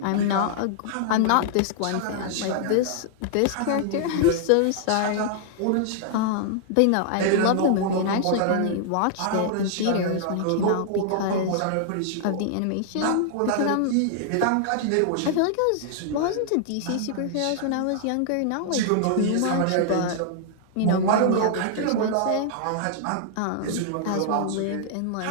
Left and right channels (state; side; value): different; both; correlation -0.01